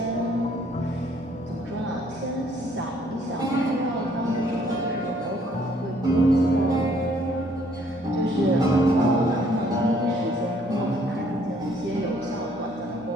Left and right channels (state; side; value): normal; both; correlation 0.63